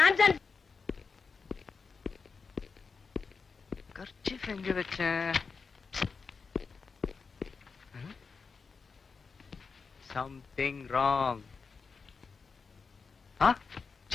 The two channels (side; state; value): right; quieter; 5.0 dB